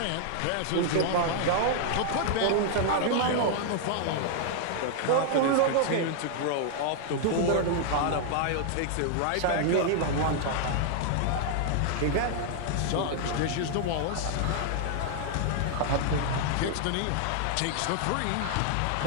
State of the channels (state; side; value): different; both; correlation 0.00